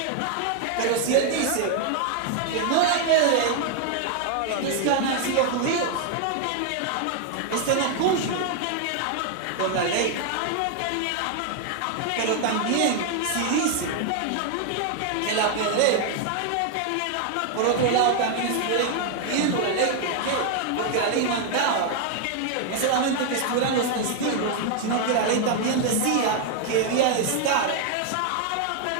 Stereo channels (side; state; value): both; different; correlation 0.00